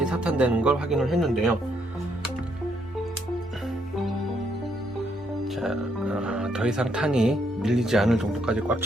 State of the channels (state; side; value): normal; both; correlation 0.73